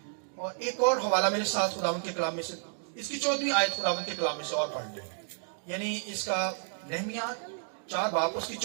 اور ایک اور حوالہ میرے ساتھ خداوند کے کلام میں سے، اس کی 14ویں آیت خداوند کے کلام میں سے اور پڑھ لیں، یعنی اس کا نہمیہ 4 باب اس کی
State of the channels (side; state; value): left; silent; digital silence